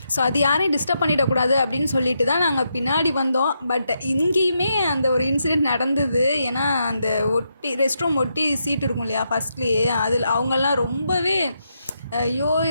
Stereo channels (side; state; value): both; inverted; correlation -0.82